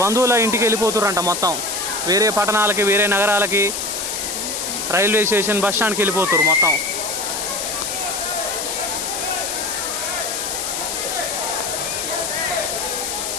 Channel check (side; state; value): left; noise; hiss, 3 dB below the sound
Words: బంధువుల ఇంటికి వెళ్ళిపోతుర్రంట. మొత్తం వేరే పట్టణాలకి, వేరే నగరాలకి, రైల్వే స్టేషన్, బస్ స్టాండ్కి వెళ్ళిపోతుర్రు మొత్తం.